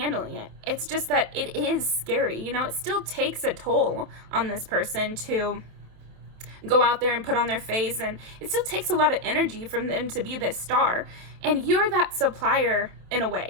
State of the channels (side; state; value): left; late; 28 ms